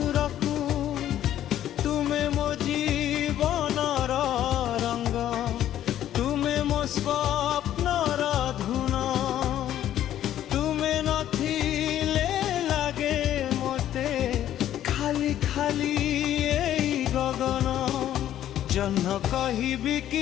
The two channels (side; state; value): right; quieter; 11.7 dB